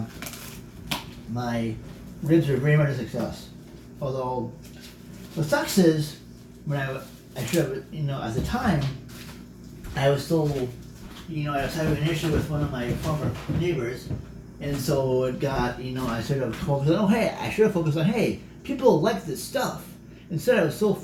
my ribs were very much a success. Although what sucks is when I should have, at the time I was still, I was having an issue with one of my former neighbors, and so it got, I sort of focused on, I should have focused on, hey, people like this stuff. Instead, I was so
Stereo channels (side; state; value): both; identical; correlation 1.00